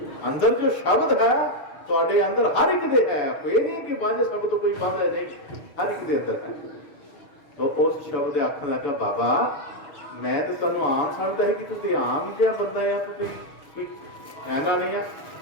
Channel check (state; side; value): late; right; 6.7 ms